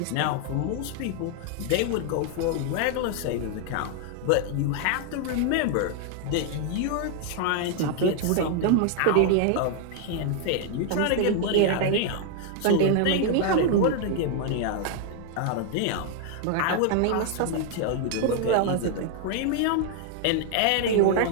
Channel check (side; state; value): both; different; correlation 0.00